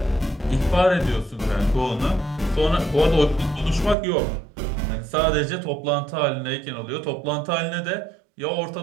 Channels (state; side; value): drops out; left; at 4.0 s